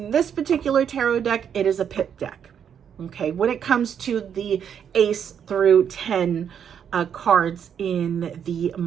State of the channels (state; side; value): quieter; left; 8.2 dB